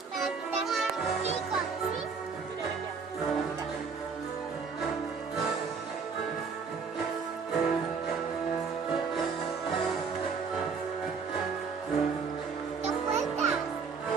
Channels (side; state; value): left; quieter; 5.4 dB